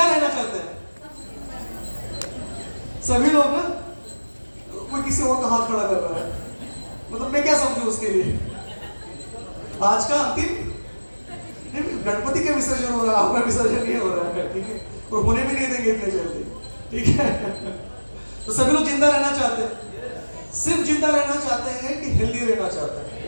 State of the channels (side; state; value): both; inverted; correlation -1.00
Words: रहना चाहते हैं? सभी लोग ना? कोई किसी और का हाथ खड़ा कर रहा है, मतलब मैं क्या समझू उसके लिए? आज का अंतिम गणपति का विसर्जन हो रहा है, आपका विसर्जन नहीं हो रहा है, ठीक है, और होने भी नहीं देंगे इतने जल्दी, ठीक है। तो सभी लोग जिंदा रहना चाहते हैं, सिर्फ जिंदा रहना चाहते हैं कि हेल्दी रहना चाहते हैं?